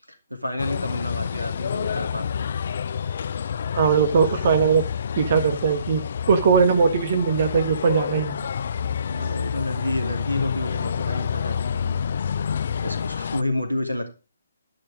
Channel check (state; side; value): inverted; both; correlation -0.64